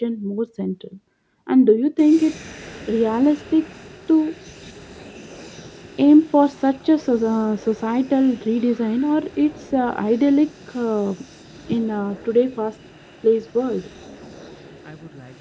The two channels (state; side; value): identical; both; correlation 1.00